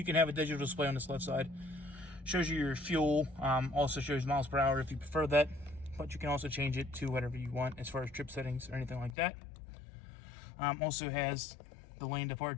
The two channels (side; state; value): right; drops out; at 9.2 s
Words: can have a digital display on this left side. Shows you your fuel, also shows miles per hour if you prefer that. But you can also change it to whatever you want as far as trip settings or anything like that. Also has the lane